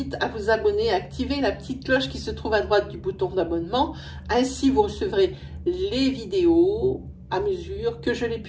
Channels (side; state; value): both; identical; correlation 1.00